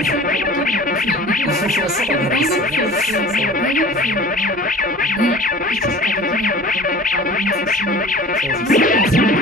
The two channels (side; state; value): both; normal; correlation 0.43